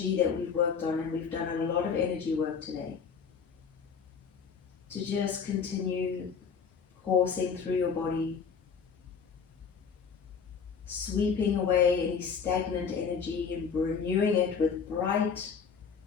that we've worked on, and we've done a lot of energy work today, to just continue coursing through your body, sweeping away any stagnant energy and renewing it with bright,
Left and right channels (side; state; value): right; quieter; 6.2 dB